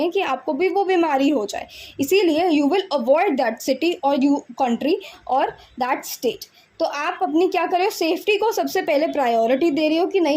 कि आपको भी वो बीमारी हो जाए। इसीलिए you will avoid that city और यू कंट्री और दैट स्टेट। तो आप अपनी क्या कर रहे हो, सेफ्टी को सबसे पहले प्रायोरिटी दे रहे हो कि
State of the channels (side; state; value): both; identical; correlation 1.00